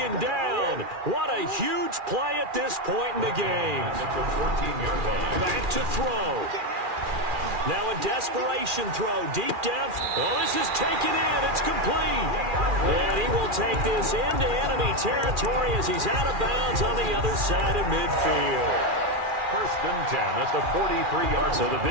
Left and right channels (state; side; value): late; left; 2.4 ms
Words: down. What a huge play at this point in the game. At the 14-yard line. Back to throw. Now a desperation throw deep down. Oh, this is taken in. It's complete. And he will take this into enemy territory as he's out of bounds on the other side of midfield. 1st and 10 at the 43-yard line. So the